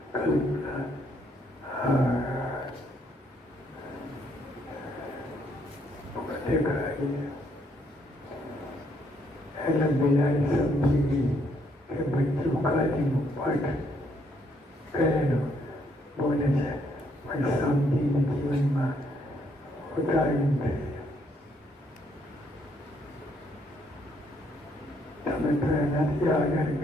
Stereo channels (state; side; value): normal; both; correlation 0.71